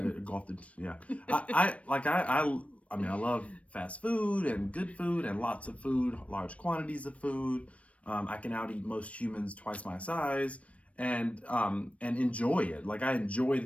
I mean, I love fast food and good food and lots of food, large quantities of food. I can out eat most humans twice my size and enjoy it. Like, I enjoy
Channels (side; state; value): right; late; 0.064 ms